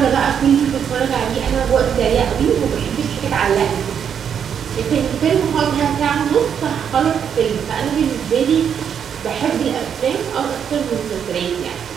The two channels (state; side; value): quieter; left; 7.9 dB